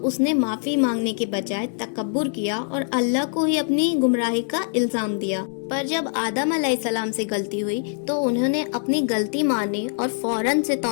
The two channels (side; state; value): right; silent; 63 dB below the other